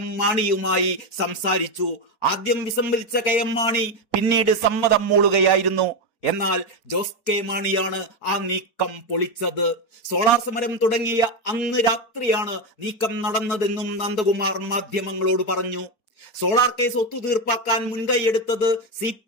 മാണിയുമായി സംസാരിച്ചു. ആദ്യം വിസമ്മതിച്ച കെ.എം. മാണി പിന്നീട് സമ്മതം മൂളുകയായിരുന്നു. എന്നാൽ ജോസ് കെ മാണിയാണ് ആ നീക്കം പൊളിച്ചത്. സോളാർ സമരം തുടങ്ങിയ അന്ന് രാത്രിയാണ് നീക്കം നടന്നതെന്നും നന്ദകുമാർ മാധ്യമങ്ങളോട് പറഞ്ഞു. സോളാർ കേസ് ഒത്തുതീർപ്പാക്കാൻ മുൻകൈയെടുത്തത്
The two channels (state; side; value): late; right; 4.2 ms